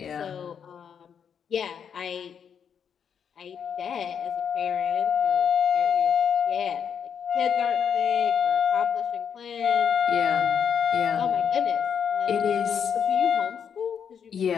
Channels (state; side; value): quieter; right; 7.6 dB